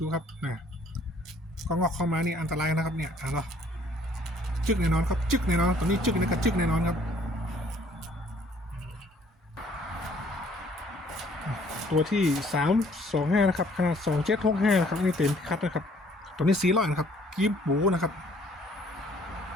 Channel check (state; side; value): normal; both; correlation 0.60